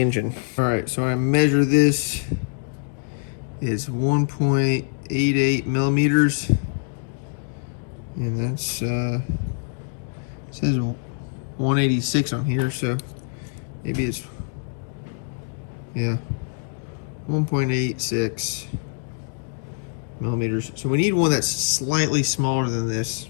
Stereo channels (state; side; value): silent; right; 62 dB below the other